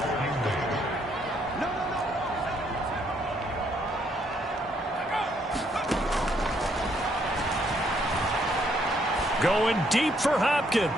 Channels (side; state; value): both; normal; correlation 0.70